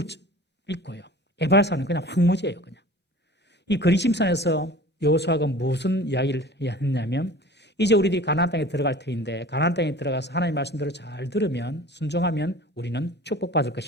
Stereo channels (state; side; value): normal; both; correlation 0.42